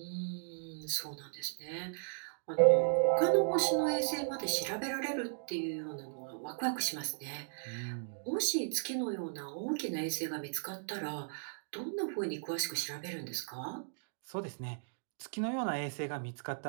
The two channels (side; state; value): left; silent; digital silence